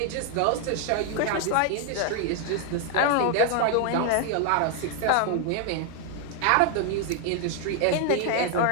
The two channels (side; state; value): both; different; correlation 0.00